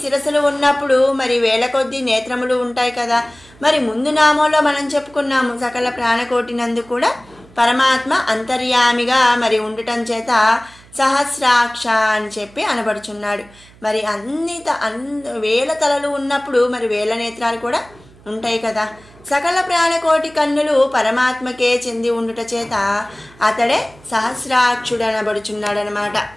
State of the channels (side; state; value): right; noise; hum, 25 dB below the sound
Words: శిరస్సులు ఉన్నప్పుడు మరి 1000 కొద్ది నేత్రములు ఉంటాయి కదా. మరి ముందు నామంలో మనం చెప్పుకున్నాము సకల ప్రాణకోటి నందు కూడా పరమాత్మ అంతర్యామిగా మరి ఉండటం చేత సహస్రాక్ష అని చెప్పి అనబడుచున్నాడు. మరి 1000 తలలు ఉన్నప్పుడు మరి 1000 నేత్రాలు కూడా ఉంటాయి కదా. సకల ప్రాణకోటి కన్నులు పరమాత్మకే చెంది ఉండుట చేత అతడే సహస్రాక్షుడు అనబడుచున్నాడనమాట.